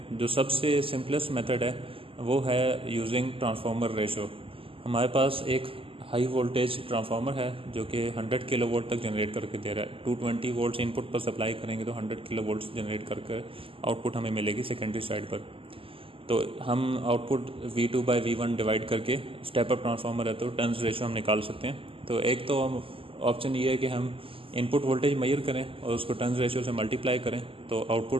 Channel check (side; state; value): left; late; 0.26 ms